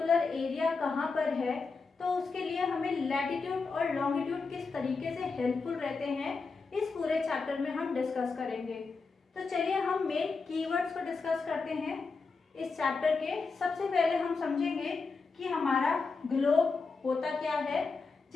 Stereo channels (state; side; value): quieter; right; 4.4 dB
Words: एरिया कहाँ पर है, तो उसके लिए हमें लैटिट्यूड और लॉन्गिट्यूड किस तरीके से हेल्पफुल रहते हैं इस पूरे चैप्टर में हम डिस्कस करेंगे। तो चलिए हम मेन कीवर्ड्स को डिस्कस करते हैं इस चैप्टर के। सबसे पहले हम समझेंगे कि हमारा ग्लोब होता क्या है,